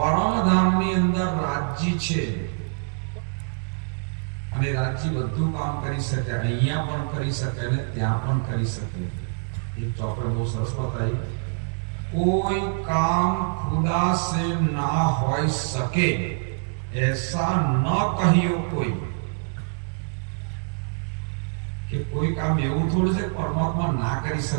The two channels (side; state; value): left; silent; 62 dB below the other